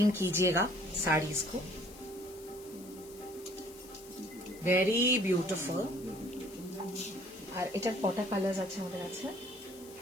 कीजिएगा साड़ीज को, ভেরি বিউটিফুল। আর এটার কটা কালার্স আছে আমাদের কাছে?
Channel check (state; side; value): noise; left; hiss, 19 dB below the sound